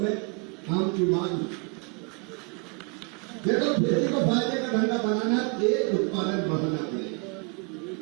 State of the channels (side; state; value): left; quieter; 36.8 dB